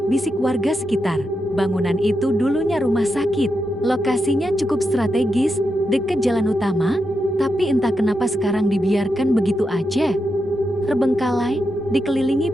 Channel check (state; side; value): normal; both; correlation 0.85